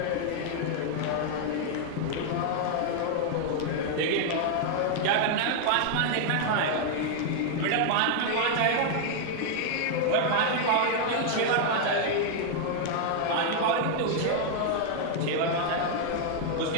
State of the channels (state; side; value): different; both; correlation -0.01